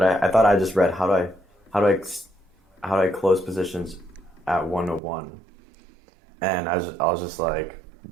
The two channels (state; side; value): drops out; left; at 5.0 s